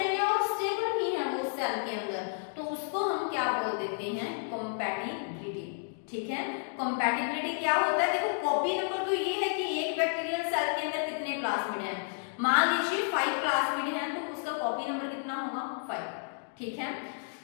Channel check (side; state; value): right; silent; digital silence